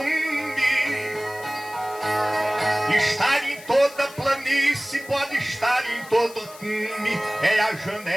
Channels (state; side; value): noise; left; hiss, 19 dB below the sound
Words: Estar em toda planície, pode estar em todo cume. É a